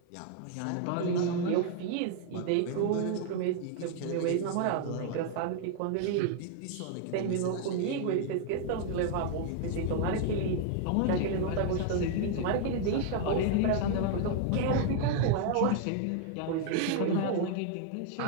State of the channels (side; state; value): both; different; correlation 0.00